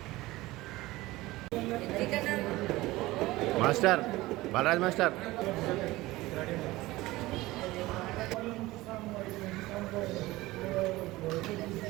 Master Balaraj master.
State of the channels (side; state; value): left; quieter; 18.9 dB